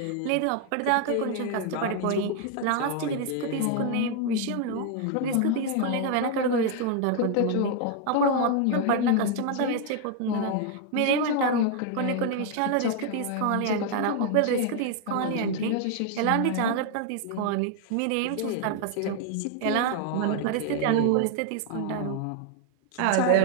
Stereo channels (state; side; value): different; both; correlation 0.00